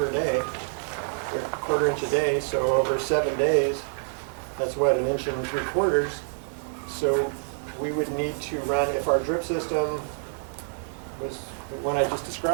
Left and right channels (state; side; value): silent; left; 60 dB below the other